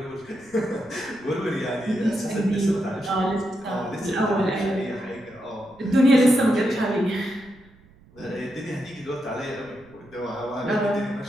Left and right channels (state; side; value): noise; right; rumble, 27 dB below the sound